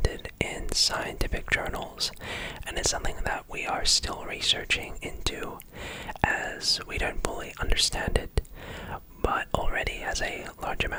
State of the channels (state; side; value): identical; both; correlation 1.00